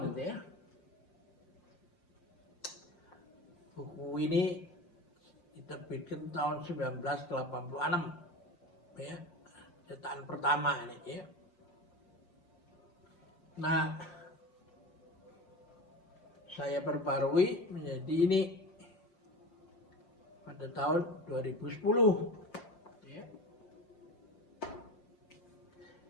gitu ya. Buku ini diterbitkan tahun 1986 ya, cetakan pertama ini ya. Nah, saya perbarui menjadi ini pada tahun 2010 ya.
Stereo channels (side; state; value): right; late; 5.5 ms